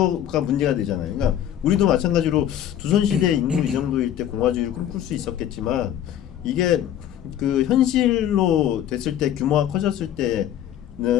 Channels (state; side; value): quieter; right; 10.9 dB